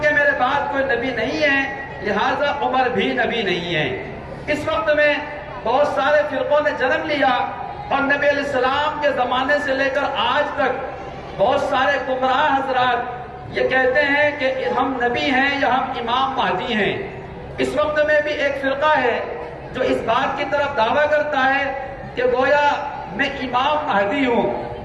میرے بعد کوئی نبی نہیں ہے لہذا عمر بھی نبی نہیں ہے۔ اس وقت میں بہت سارے فرقوں نے جنم لیا اور نبی علیہ السلام کے زمانے سے لے کر آج تک بہت سارے گمراہ حضرات یہ کہتے ہیں کہ ہم نبی ہیں یا ہم امام مہدی ہیں۔ اس وقت میں بھی ایک فرقہ ہے جو اس بات کی طرف دعویٰ کرتا ہے کہ گویا میں امام مہدی ہوں،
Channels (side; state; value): both; identical; correlation 1.00